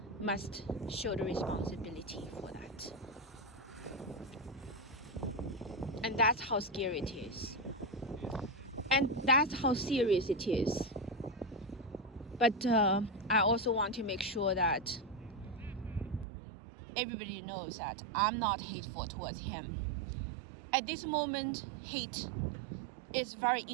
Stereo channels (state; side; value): drops out; left; at 16.2 s